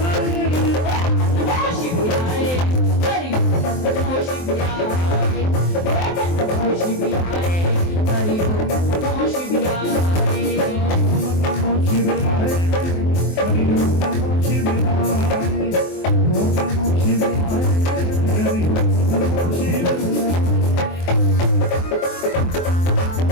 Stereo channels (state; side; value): late; right; 23 ms